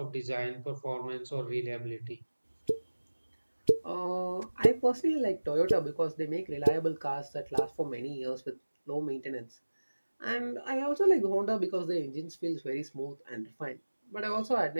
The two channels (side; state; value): both; inverted; correlation -1.00